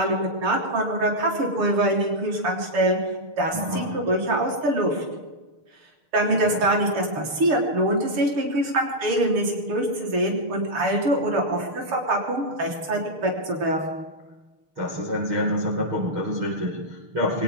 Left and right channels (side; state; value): left; late; 6.6 ms